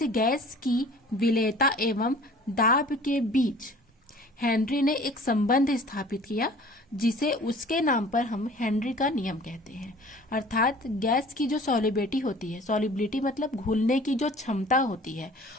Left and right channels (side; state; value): both; normal; correlation 0.48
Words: गैस की विलेयता एवं दाब के बीच हेनरी ने एक संबंध स्थापित किया, जिसे उसके नाम पर हम हेनरी का नियम कहते हैं। अर्थात गैस की जो सॉलिबिलिटी होती है, सॉलिबिलिटी मतलब घुलने की जो क्षमता होती है,